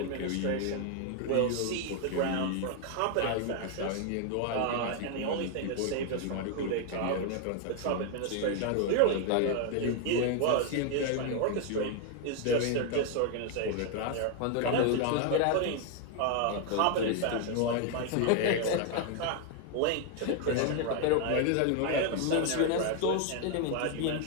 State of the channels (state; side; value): different; both; correlation 0.00